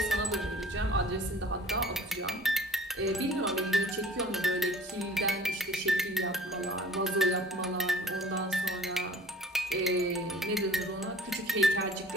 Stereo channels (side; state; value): both; normal; correlation 0.47